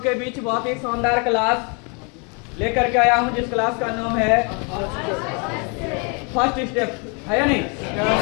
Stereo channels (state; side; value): quieter; right; 34.2 dB